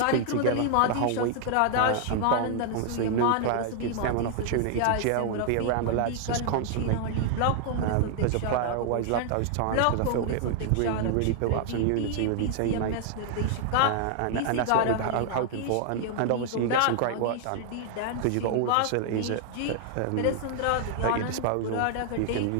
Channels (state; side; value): different; both; correlation 0.00